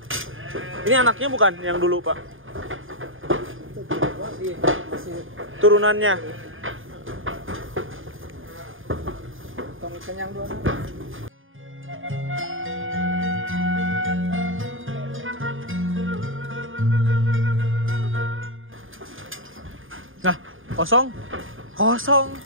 Ini anaknya bukan yang dulu Pak? Masih Turunannya. tong kenyang dua. Nah, kosong.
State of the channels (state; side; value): late; left; 0.59 ms